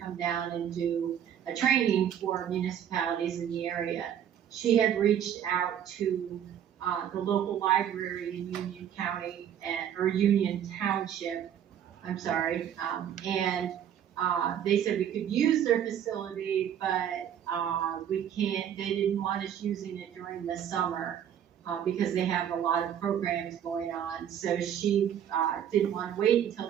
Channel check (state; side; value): quieter; left; 9.6 dB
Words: down and do a training for municipalities in the area. She had reached out to the local library in Union County or Union Township, I'm sorry, and they said we could use their facility, but they didn't want us using it during the summer because they have a lot of programs going on. So she didn't want to wait until